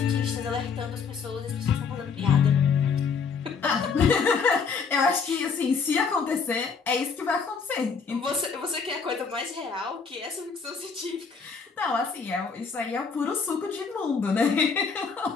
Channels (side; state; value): right; quieter; 5.5 dB